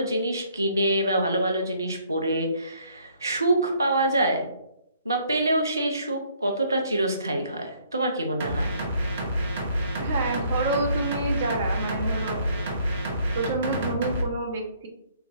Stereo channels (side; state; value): both; inverted; correlation -0.64